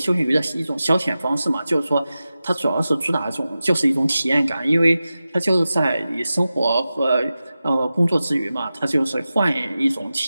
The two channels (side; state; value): both; inverted; correlation -0.94